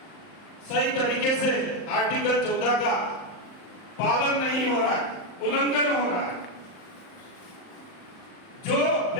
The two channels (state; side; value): late; right; 38 ms